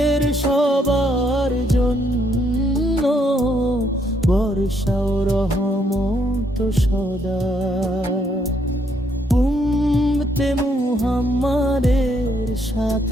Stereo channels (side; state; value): both; normal; correlation 0.72